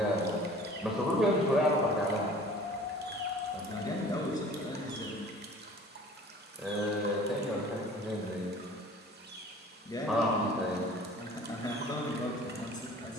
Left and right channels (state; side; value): normal; both; correlation 0.47